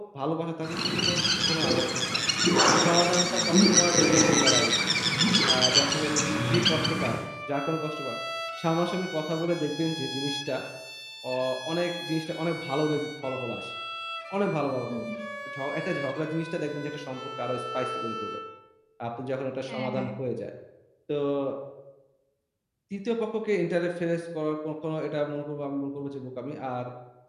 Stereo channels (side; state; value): both; identical; correlation 1.00